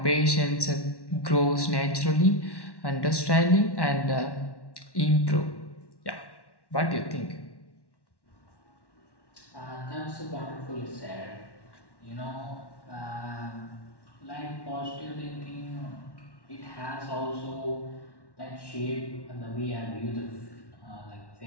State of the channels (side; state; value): right; late; 1.1 ms